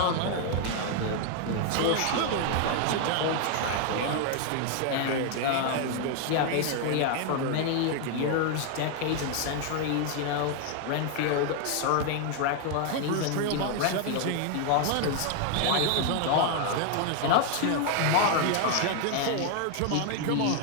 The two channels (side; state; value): both; different; correlation 0.00